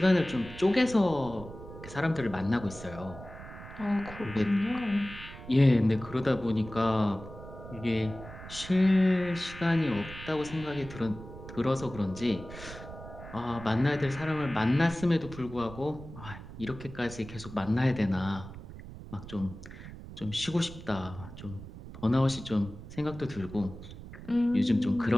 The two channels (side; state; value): right; noise; rumble, 14 dB below the sound